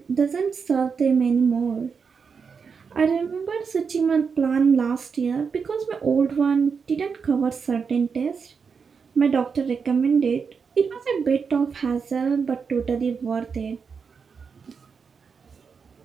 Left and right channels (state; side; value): quieter; left; 5.8 dB